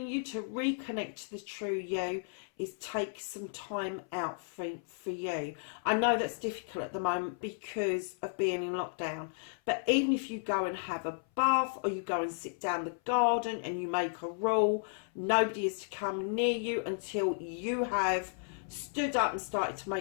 you to reconnect to the true you is take some time out for you. I know that's difficult at the moment because of being in lockdown, but even if you go and have a bath or you go and sit down the garden and you make a rule, nobody is to come near you until you have stood up and started to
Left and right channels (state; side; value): silent; right; 55 dB below the other